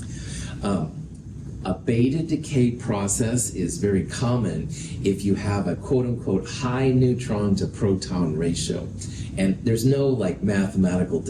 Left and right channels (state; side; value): identical; both; correlation 1.00